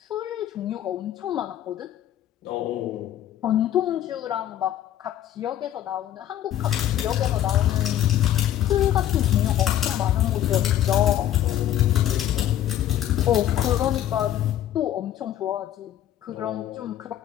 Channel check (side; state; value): right; quieter; 11.8 dB